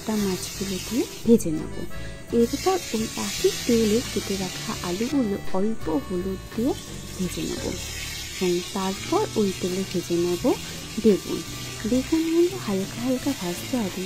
মাছগুলো দিয়ে ভেজে নেব। এরপর ওই একই তেলে কেটে রাখা আলুগুলো অল্প হলুদ দিয়ে ভেজে নেব এবং তারপর ওই তেলে ভেজে নেব বেগুনগুলো হালকা হালকা ভাজতে হবে,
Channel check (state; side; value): identical; both; correlation 1.00